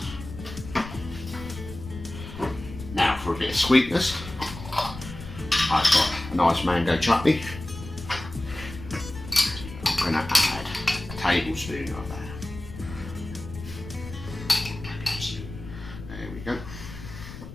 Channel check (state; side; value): noise; left; rumble, 12 dB below the sound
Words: well. Now for a bit of sweetness, I've got a nice mango chutney. I'm going to add a tablespoon of that.